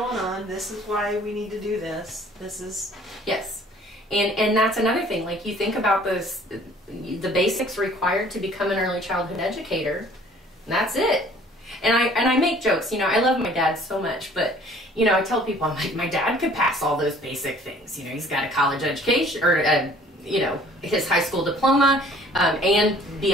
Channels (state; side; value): normal; both; correlation 0.54